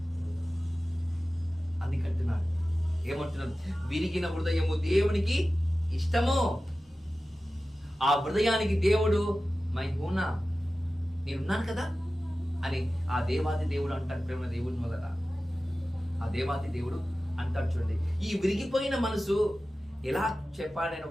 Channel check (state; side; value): normal; both; correlation 0.95